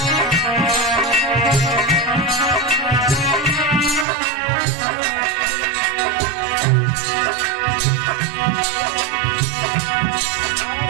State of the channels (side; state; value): left; drops out; at 4.0 s